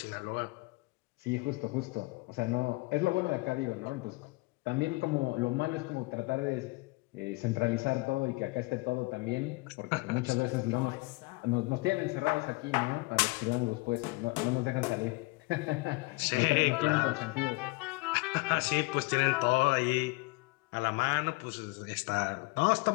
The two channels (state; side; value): quieter; right; 25.2 dB